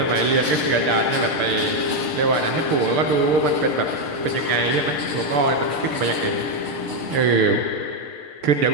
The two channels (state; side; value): late; left; 6.6 ms